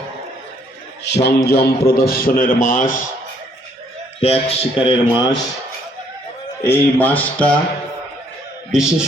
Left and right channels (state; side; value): normal; both; correlation 0.66